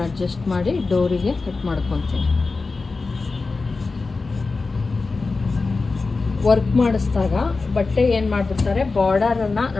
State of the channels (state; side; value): quieter; right; 3.9 dB